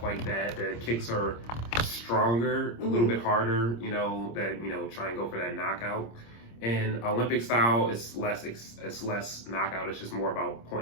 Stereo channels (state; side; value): late; right; 26 ms